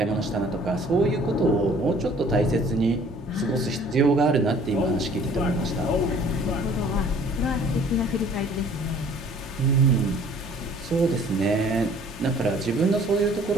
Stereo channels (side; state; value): both; normal; correlation 0.54